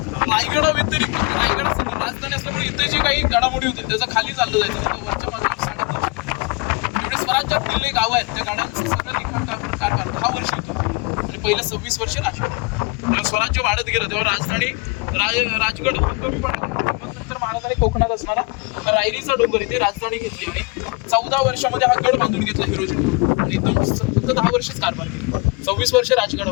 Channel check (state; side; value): quieter; right; 28.8 dB